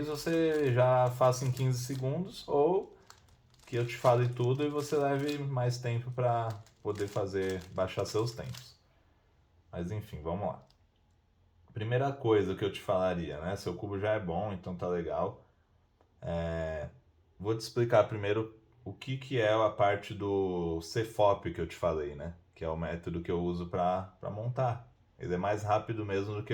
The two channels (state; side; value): identical; both; correlation 1.00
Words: você já faça em 15 segundos, ou que eu te fale tudo e você leve mais tempo para poder fazer, baixar seus tempos. Mas enfim, vamos lá. Primeira coisa que eu te falaria, né? Seu cubo já é bom, então tá legal. Vou te explicar primeiro o que é a parte do CFOP que eu te falei, né? Que é o método que eu uso para montar. Ele é mais rápido mesmo do